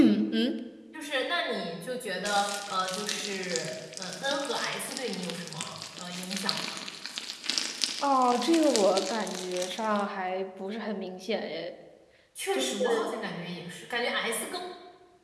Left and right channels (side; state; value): both; identical; correlation 1.00